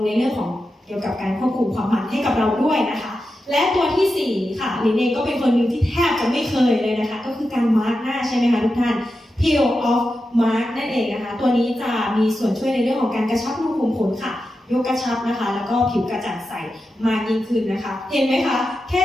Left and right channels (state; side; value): normal; both; correlation 0.90